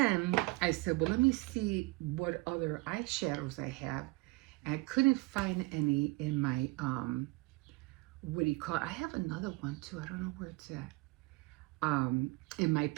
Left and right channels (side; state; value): left; quieter; 23.9 dB